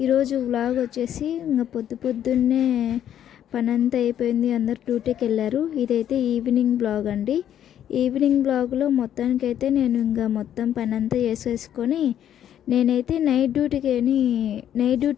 ఈరోజు వ్లాగ్ వచ్చేసి ఇంకా పొద్దున్నే పనంతా అయిపోయింది, అందరు డ్యూటీకి వెళ్ళారు. ఇదైతే ఈవినింగ్ బ్లాగ్ అండి. ఈవినింగ్ బ్లాగ్లో మొత్తానికైతే నేను ఇంకా మొత్తం పనంతా చేసేసుకొని నేనైతే నైట్ డ్యూటీ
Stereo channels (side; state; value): right; quieter; 10.4 dB